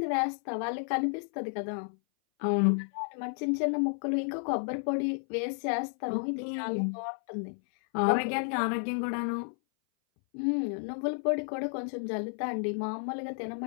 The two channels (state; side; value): silent; right; 57 dB below the other